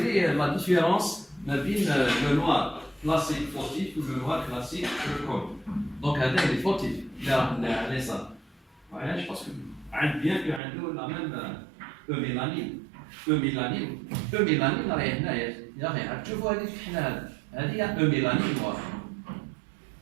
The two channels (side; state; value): left; drops out; at 10.6 s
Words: لا ديفيرونس ما بين لو نوار كلاسيك فوتيف و لو نوار كلاسيك كول. دونك هذا اللي فوتيف اللي راه على اليسار. علاش باسكو عند بيان كو عنده لا ميم ميلانين. ميلانين راهي هنايا يا اخي تشوفوا هذيك الحنا هذه ميلانين نوار.